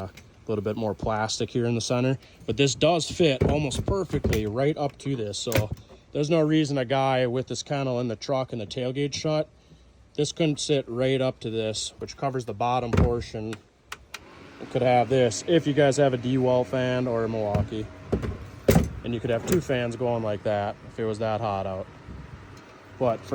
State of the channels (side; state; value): both; identical; correlation 1.00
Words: little bit more plastic here in the center, but this does fit almost perfectly right up to this. So there's no reason a guy with this kennel in the truck and the tailgate shut, this couldn't sit right up to this, which covers the bottom portion. It could have this if you guys have a DYI fan or a Milwaukee. And you could have 2 fans going like that if it was that hot out. But